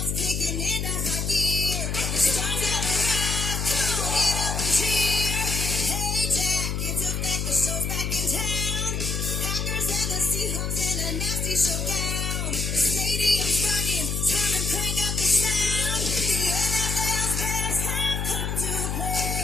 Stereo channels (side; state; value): left; noise; hum, 1 dB below the sound